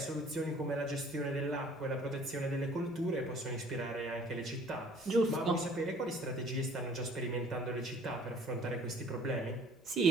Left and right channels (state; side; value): normal; both; correlation 0.53